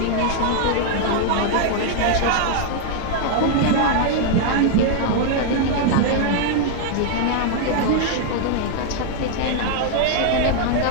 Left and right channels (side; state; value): both; different; correlation 0.00